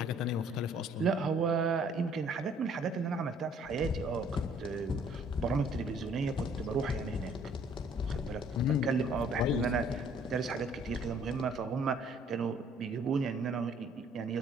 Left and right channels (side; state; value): both; normal; correlation 0.60